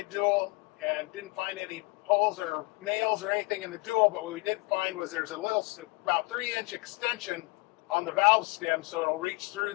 dual, and didn't find any holes or nails or anything in the dual, but what we did find was there's a little, about 3-inch extension on the valve stem, so it'll reach through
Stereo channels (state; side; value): quieter; right; 25.4 dB